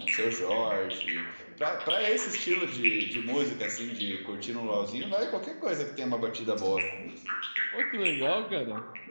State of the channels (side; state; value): both; inverted; correlation -1.00